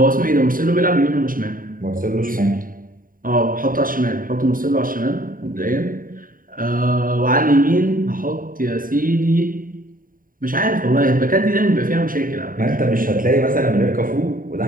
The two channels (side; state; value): left; late; 0.41 ms